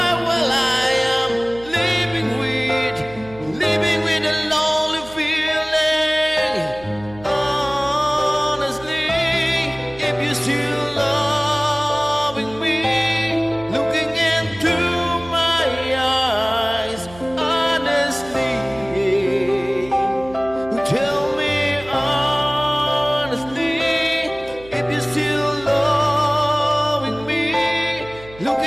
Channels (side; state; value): right; noise; hum, 20 dB below the sound